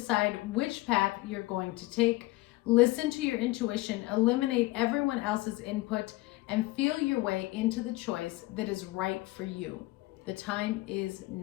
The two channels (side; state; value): right; quieter; 19.9 dB